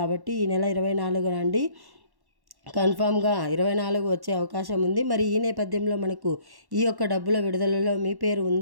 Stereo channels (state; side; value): late; left; 1.1 ms